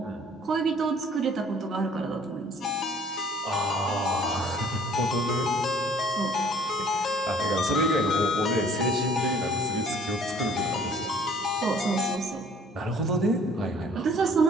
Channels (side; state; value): both; normal; correlation 0.55